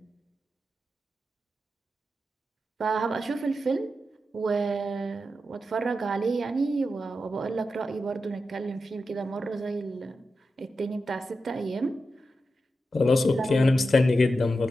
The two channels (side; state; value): both; normal; correlation 0.89